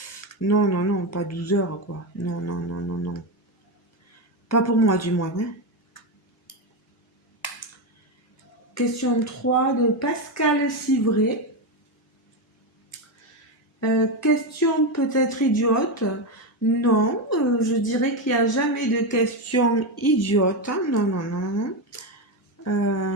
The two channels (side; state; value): both; normal; correlation 0.11